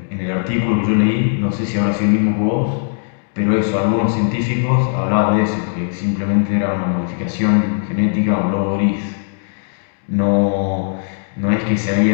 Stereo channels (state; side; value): silent; right; digital silence